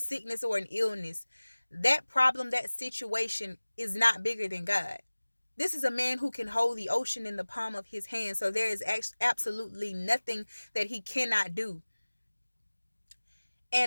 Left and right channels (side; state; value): both; inverted; correlation -1.00